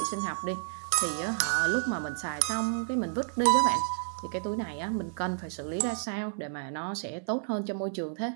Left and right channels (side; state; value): left; silent; 57 dB below the other